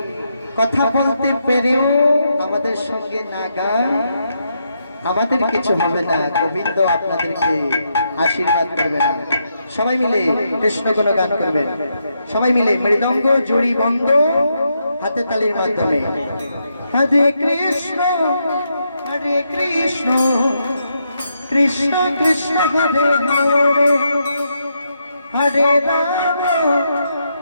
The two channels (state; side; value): inverted; both; correlation -0.81